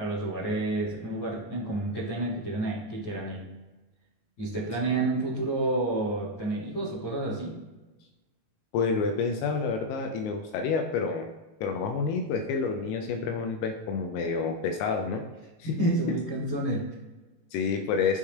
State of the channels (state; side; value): late; right; 19 ms